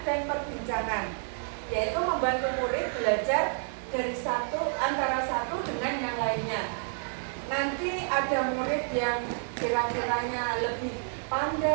dan perbincangan, yaitu membantu murid belajar dari antara satu dengan yang lainnya. Nanti ada murid yang kira-kiranya lebih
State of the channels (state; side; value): silent; left; digital silence